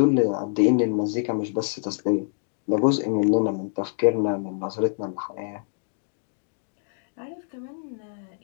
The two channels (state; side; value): silent; right; digital silence